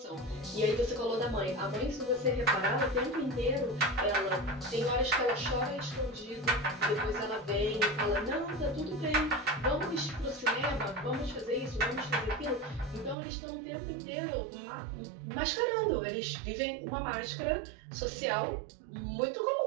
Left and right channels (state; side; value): drops out; left; at 13.2 s